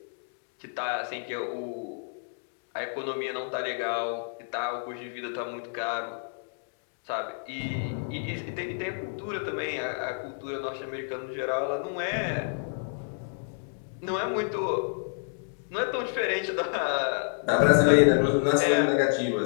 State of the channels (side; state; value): right; silent; digital silence